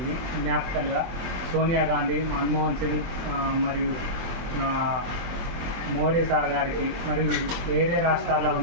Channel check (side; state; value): left; late; 23 ms